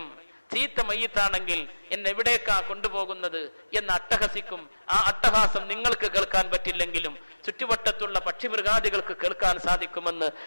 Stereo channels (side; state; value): both; inverted; correlation -1.00